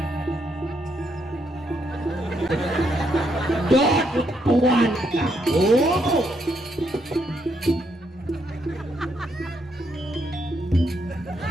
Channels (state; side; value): normal; both; correlation 0.76